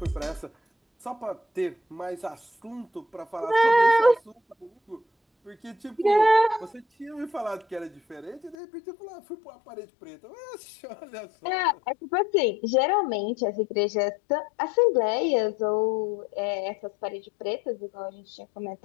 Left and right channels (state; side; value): drops out; right; at 8.6 s